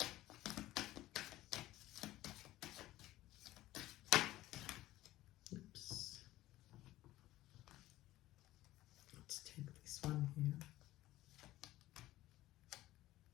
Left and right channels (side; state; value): right; quieter; 16.0 dB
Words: Oops. Let's take this one here.